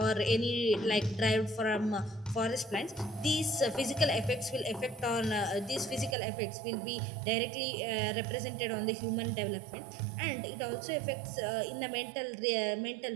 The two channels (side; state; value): left; drops out; at 6.2 s